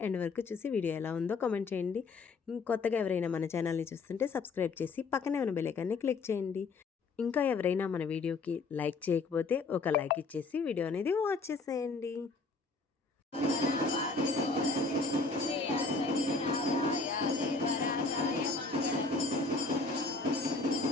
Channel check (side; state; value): right; quieter; 4.0 dB